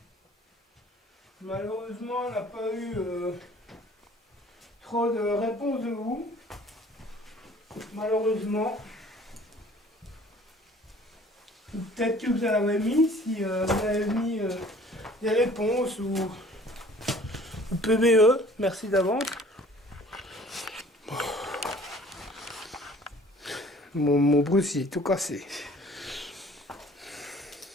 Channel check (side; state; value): both; normal; correlation 0.52